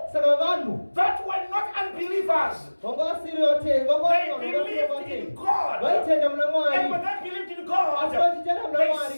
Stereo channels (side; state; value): both; inverted; correlation -1.00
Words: that were not unbelievers. They believed in God. And when they believed in God, they